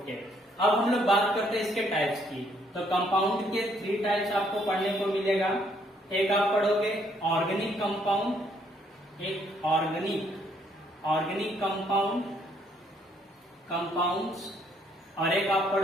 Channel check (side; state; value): both; normal; correlation 0.68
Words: अब हम लोग बात करते हैं इसके टाइप्स की। तो कंपाउंड के 3 टाइप्स आपको पढ़ने को मिलेगा। एक आप पढ़ोगे ऑर्गेनिक कंपाउंड, एक ऑर्गेनिक कंपाउंड्स, और एक आप